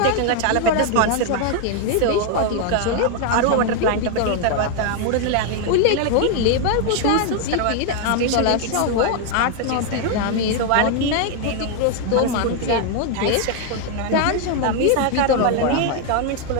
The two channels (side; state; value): both; different; correlation 0.01